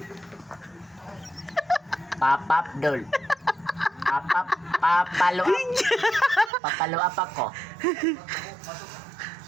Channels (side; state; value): left; drops out; at 6.5 s